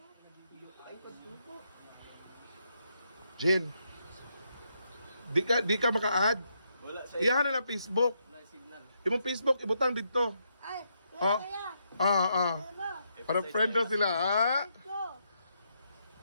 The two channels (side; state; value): both; inverted; correlation -0.79